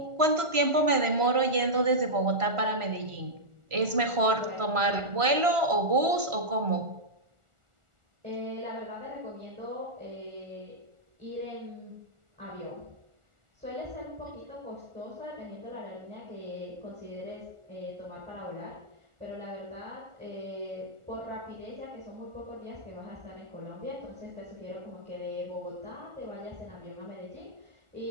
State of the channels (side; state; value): left; late; 1.4 ms